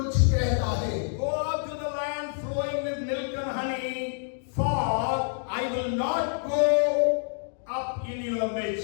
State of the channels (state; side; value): silent; right; digital silence